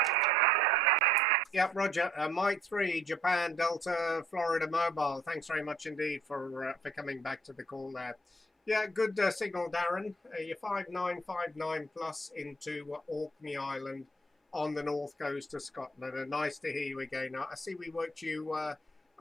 Yep, Roger. Mike 3, Japan, Delta, Florida Mobile. Thanks very much indeed for coming back to the call there. Yeah, good signal, Darren. You're 5959 plus into Orkney Island on the north coast of Scotland. And nice to hear you again. I see we worked you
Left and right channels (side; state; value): both; normal; correlation 0.64